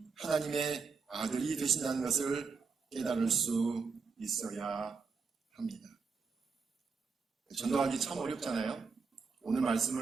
하나님의 아들이 되신다는 것을 깨달을 수 있어야 합니다. 전도하기 참 어렵잖아요. 오늘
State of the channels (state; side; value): quieter; left; 5.1 dB